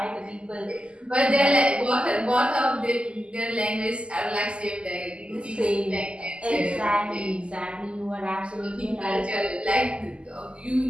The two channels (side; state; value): left; late; 0.053 ms